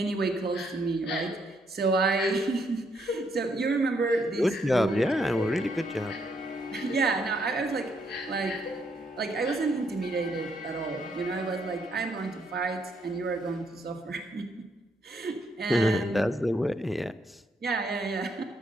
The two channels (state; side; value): normal; both; correlation 0.73